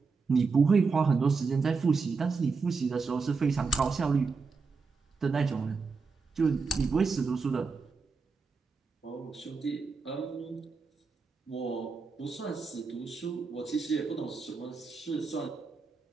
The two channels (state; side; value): quieter; left; 4.7 dB